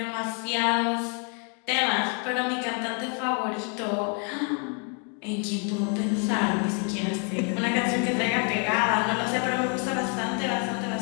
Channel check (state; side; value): quieter; right; 39.2 dB